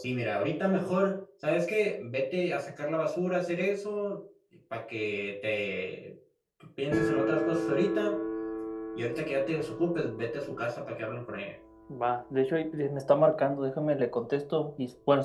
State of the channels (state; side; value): identical; both; correlation 1.00